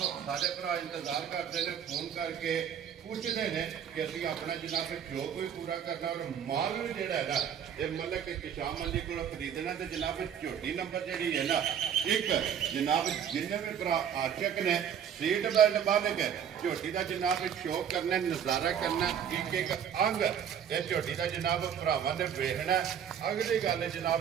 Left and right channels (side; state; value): left; quieter; 8.5 dB